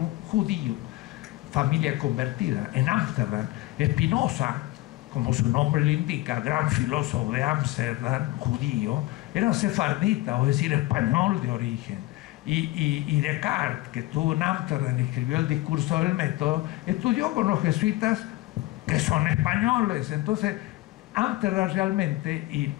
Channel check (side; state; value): right; quieter; 18.5 dB